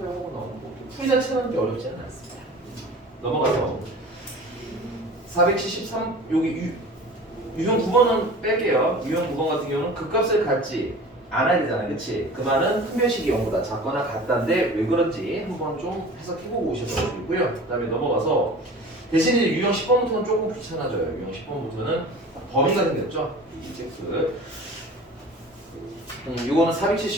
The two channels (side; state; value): both; normal; correlation 0.40